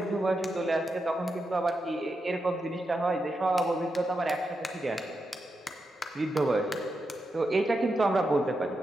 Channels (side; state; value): both; normal; correlation 0.86